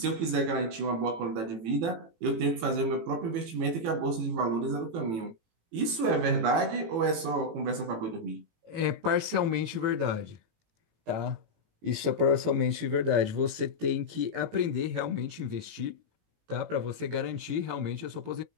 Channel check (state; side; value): late; left; 18 ms